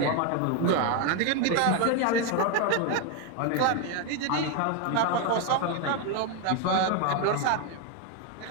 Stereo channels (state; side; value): different; both; correlation 0.01